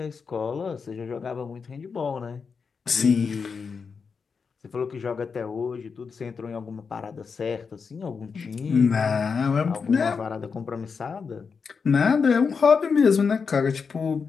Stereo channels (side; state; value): right; quieter; 5.5 dB